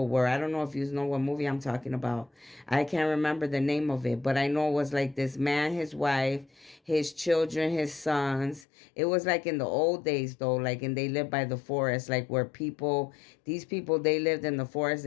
were. I don't know if you know what movie I'm talking about. I can't remember the name of it, but I know it was like this man, his wife, his children, his sons. It was like in the old days though, like, and they lived by the forest, like where people, these people, they lived in the forest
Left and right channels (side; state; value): right; drops out; at 8.7 s